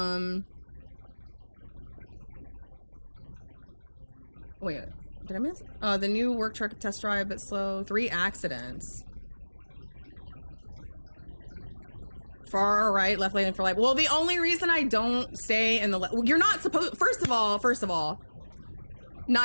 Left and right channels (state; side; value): inverted; both; correlation -1.00